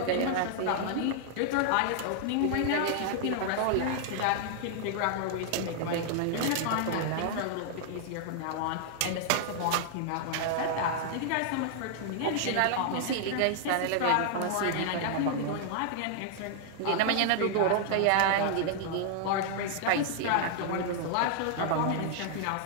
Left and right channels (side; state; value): both; different; correlation -0.01